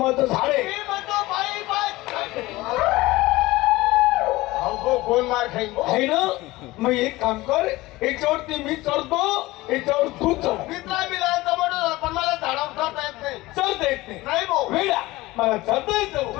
झाड आहे. मी म्हणतो पाईप कोण मार खाईन आहे ना. मग एक काम कर, याच्यावरती मी चढतो, याच्यावर तू चढ. मित्रा मिळाला पण मला झाडावर चढता येत नाही. चढता येत नाही भाऊ. वेळा मला चढता येतं.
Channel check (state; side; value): quieter; right; 19.3 dB